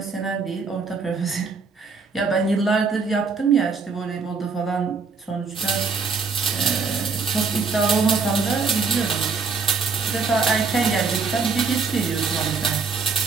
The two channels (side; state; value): left; quieter; 4.9 dB